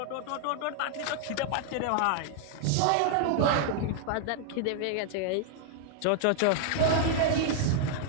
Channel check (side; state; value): both; different; correlation 0.00